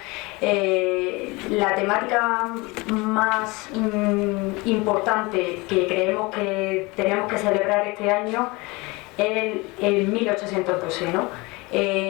la temática más importante que creemos que tenemos que celebrar este año es el 1812, ¿no?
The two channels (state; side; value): quieter; right; 24.6 dB